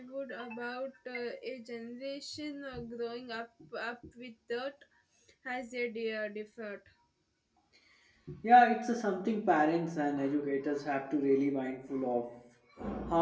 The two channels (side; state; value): both; identical; correlation 1.00